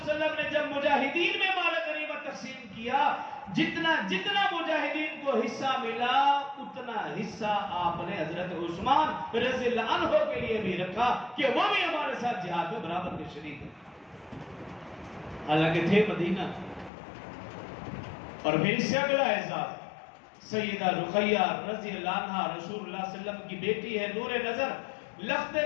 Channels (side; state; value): right; drops out; at 16.9 s